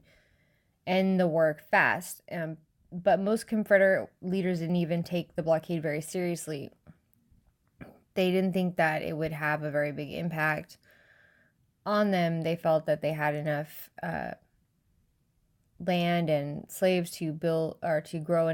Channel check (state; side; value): identical; both; correlation 1.00